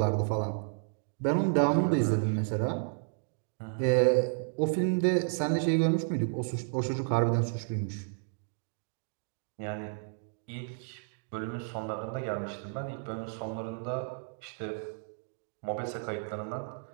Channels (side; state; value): left; silent; digital silence